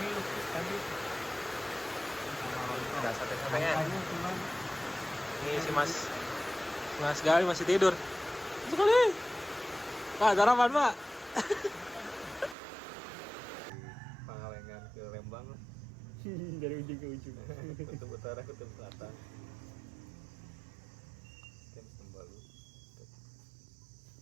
lupis tadi. Ada sate-satenya. Ini si Mas Gali masih tidur. Sekali. Pak, sarapan, Pak. Pangalengan ke Lembang lah. Dari ujung ke ujung. Kutub utara, kutub selatan. Kita Sembalu.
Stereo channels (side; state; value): left; drops out; at 12.6 s